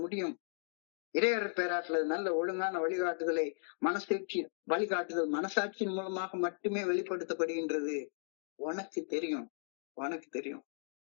முடியும். இறையர் பேராற்றல் நல்ல ஒழுங்கான வழிகாட்டுதல் மனசாட்சியின் மூலமாக மட்டுமே வெளிப்படுத்தப்படுகின்றது. உனக்கு தெரியும்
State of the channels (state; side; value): silent; right; digital silence